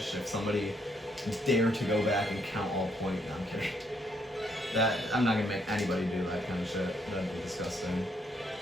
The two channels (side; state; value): both; normal; correlation 0.72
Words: if somebody dared to go back and count all points. No, I'm kidding. I'm not gonna make anybody do that kind of shit. That'd be disgusting.